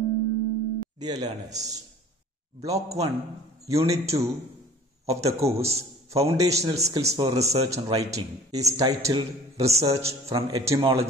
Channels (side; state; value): both; normal; correlation 0.47